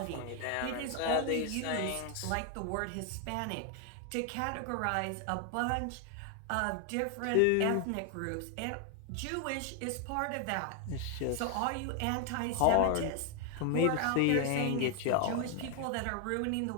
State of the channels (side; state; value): both; different; correlation 0.01